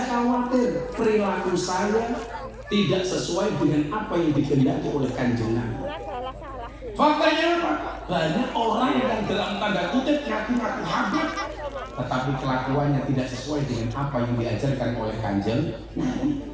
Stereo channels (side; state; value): both; identical; correlation 1.00